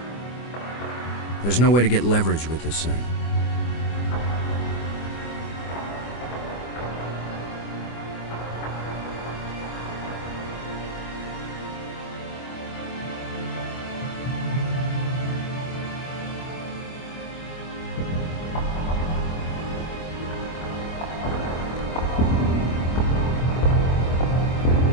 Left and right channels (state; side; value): late; right; 24 ms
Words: There's no way to get leverage with this thing.